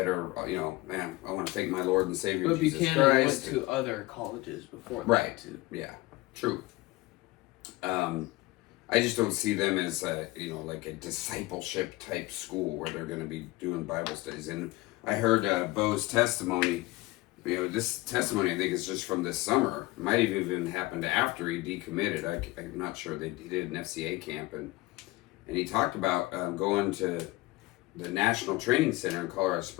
are, you know, man, I want to thank my Lord and Savior But Jesus Buchanan Christ. went to other colleges before that, right. too. Yeah, true. I just don't see them as a, you know, like a discipleship type school where they're going to be doing Bible studies. And I heard Bo's testimony. You know, this testimony I think is just from this summer. It might have even happened after he decommitted. I'm not sure. He did an FCA camp, and he talked about going to the National Training Center in Colorado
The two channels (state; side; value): quieter; right; 20.4 dB